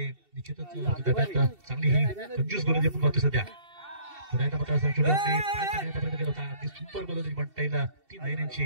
निश्चितच चांगली ही कंजूस गोलंदाजी आपण पाहतो सध्या. पुन्हा एकदा मात्र प्रयत्न केला होता. अगदी सुपर गोलंदाजी म्हणता येईल. 3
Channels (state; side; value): late; left; 2.7 ms